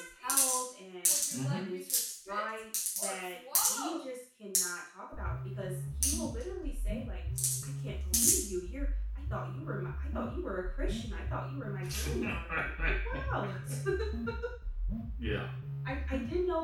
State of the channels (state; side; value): identical; both; correlation 1.00